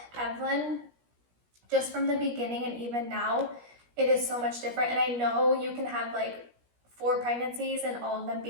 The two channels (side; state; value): left; late; 17 ms